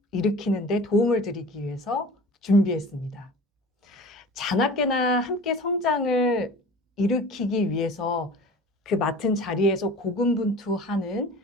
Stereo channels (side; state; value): both; normal; correlation 0.40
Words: 일으키는 데 도움을 드리기 위해서 준비했습니다. 자나깨나 함께 성장을 일으키기 위해서 그 맡은 자리에서 고군분투하는